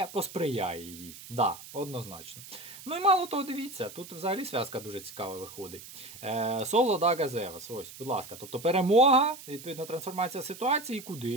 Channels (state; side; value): noise; right; hiss, 15 dB below the sound